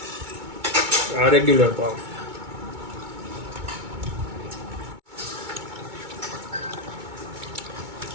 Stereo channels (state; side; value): late; left; 2.2 ms